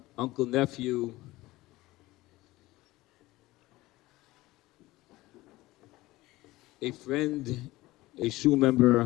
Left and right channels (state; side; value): quieter; right; 18.7 dB